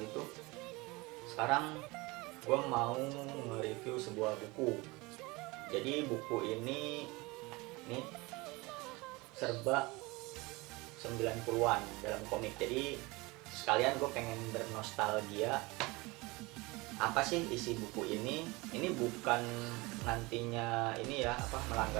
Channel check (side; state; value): left; quieter; 24.0 dB